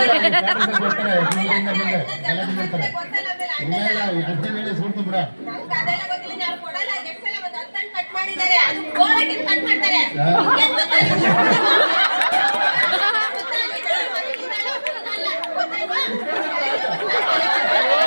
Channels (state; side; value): inverted; both; correlation -1.00